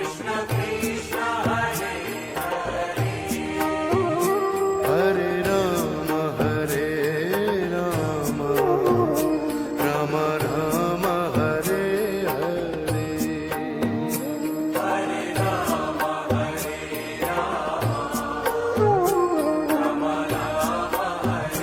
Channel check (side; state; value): both; identical; correlation 1.00